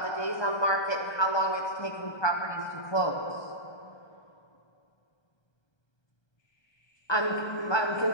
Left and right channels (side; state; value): right; late; 1.3 ms